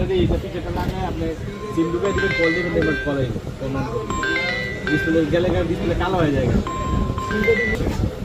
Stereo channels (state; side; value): identical; both; correlation 1.00